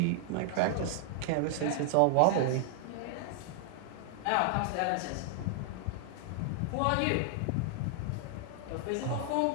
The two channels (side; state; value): both; different; correlation 0.00